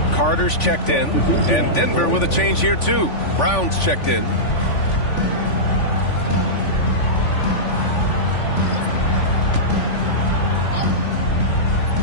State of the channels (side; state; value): right; late; 3.5 ms